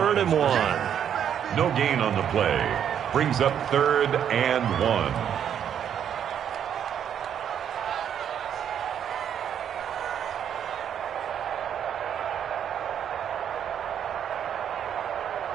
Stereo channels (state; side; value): quieter; left; 9.0 dB